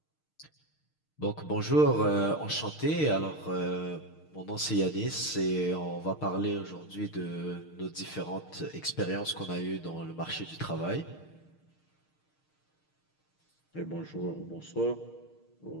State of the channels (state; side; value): late; right; 6.5 ms